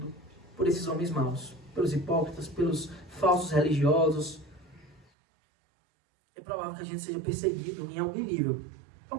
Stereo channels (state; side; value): drops out; left; at 5.1 s